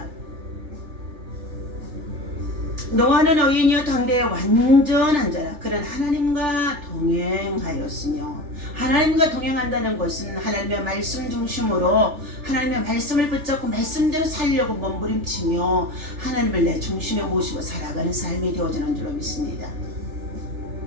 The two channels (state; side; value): late; left; 3.4 ms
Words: 노아는 어인이여 당대의 완전한 자라 그는 하나님과 동행하였으며 하나님과 동행한다는 것은 하나님의 말씀 중심으로 하나님의 말씀을 붙잡고 말씀대로 살려고 몸부림치며 하나님을 내 중심에 모시고 살아가는 삶이 되어지는 줄로 믿습니다.